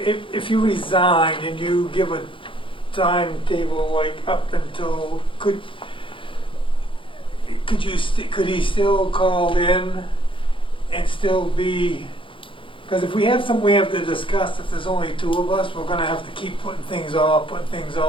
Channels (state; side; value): late; right; 0.25 ms